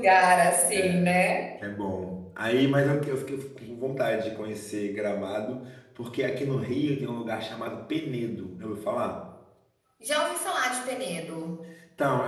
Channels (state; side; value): identical; both; correlation 1.00